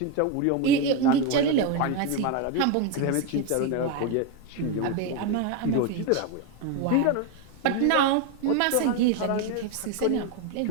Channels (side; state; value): both; different; correlation 0.02